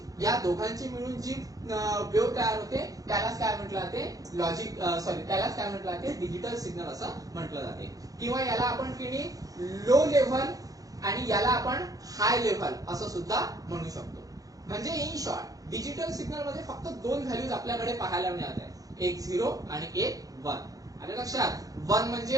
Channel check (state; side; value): late; left; 0.17 ms